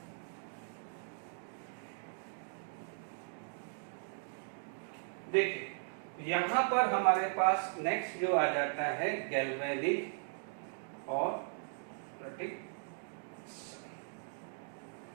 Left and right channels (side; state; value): left; silent; digital silence